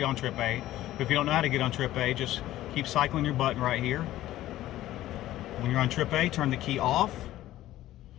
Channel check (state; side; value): quieter; right; 14.6 dB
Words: on trip A. But if you don't know how to get on trip A, just keep cycling your button right here. When you're on trip A, turn the key off.